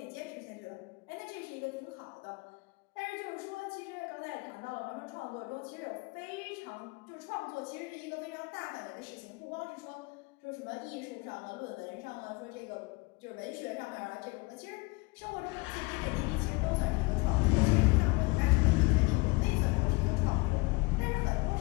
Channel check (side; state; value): right; quieter; 25.4 dB